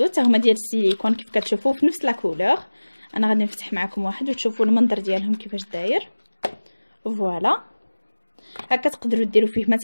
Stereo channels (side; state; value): both; inverted; correlation -1.00